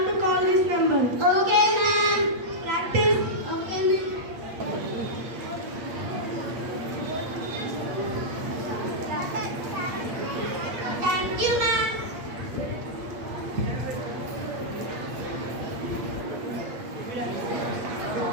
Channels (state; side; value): late; left; 8.1 ms